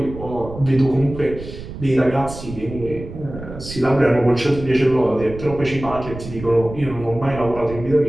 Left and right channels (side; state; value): right; noise; rumble, 12 dB below the sound